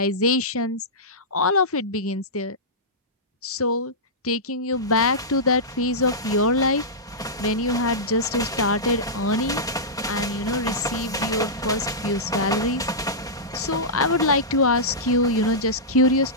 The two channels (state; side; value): normal; both; correlation -0.14